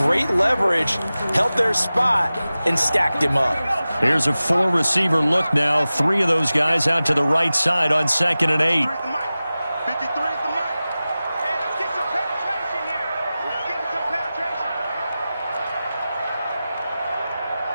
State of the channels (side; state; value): both; inverted; correlation -0.96